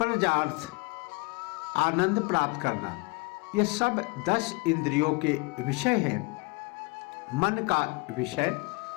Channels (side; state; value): right; quieter; 27.2 dB